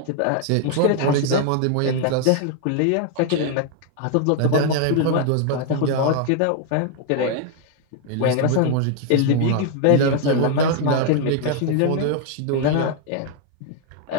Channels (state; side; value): different; both; correlation 0.00